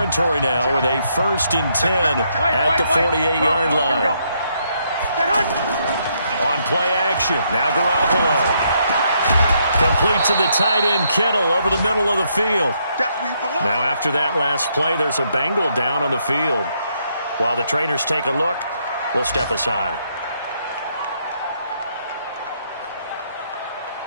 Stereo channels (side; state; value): both; inverted; correlation -0.74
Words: now with a 1st and 10 at the 48-yard line. On play action, now Garoppolo. Complete to the tight end, Kittle, over the middle of the field. Now after that last play, there's a Bengal down on the field. While the trainers take a look, we'll step aside.